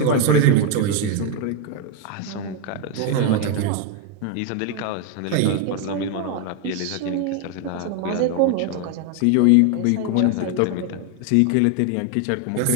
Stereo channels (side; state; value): both; different; correlation 0.01